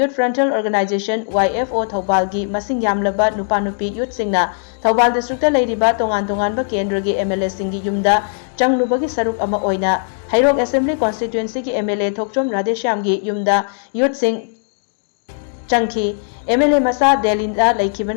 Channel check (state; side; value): silent; right; digital silence